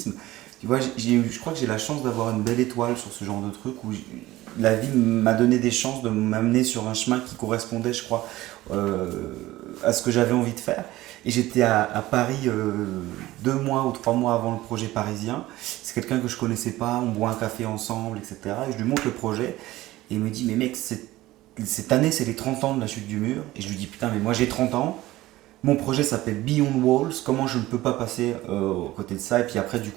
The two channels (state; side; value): quieter; left; 17.0 dB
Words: tu vois, je crois que j'ai la chance d'avoir une belle étoile sur ce genre de truc où la vie m'a donné des chances de m'amener sur un chemin qui correspondait, je crois, euh, à ce que j'avais envie de faire. Et j'étais à Paris 2 mois ou 3 mois avant le projet parisien. C'est quelqu'un que je connaissais pas, on boit un café ensemble, etc. Et je lui montre le projet et il me dit, mais mec, cette année c'est les 30 ans de la chute du mur. Et je lui dis, putain, mais moi j'ai 30 ans. Mon projet s'appelle Beyond Walls. Comment je ne peux pas passer aux côté de ça? Et puis après, du